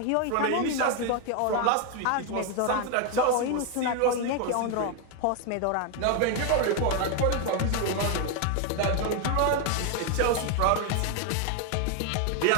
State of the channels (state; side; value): different; both; correlation 0.01